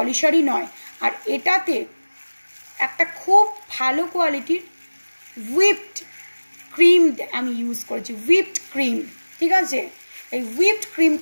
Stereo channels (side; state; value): both; inverted; correlation -1.00